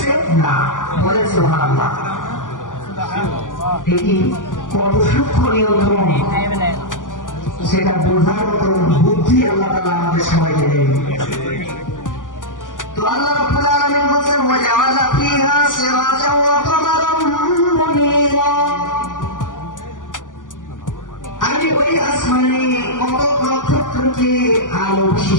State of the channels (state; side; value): late; right; 0.88 ms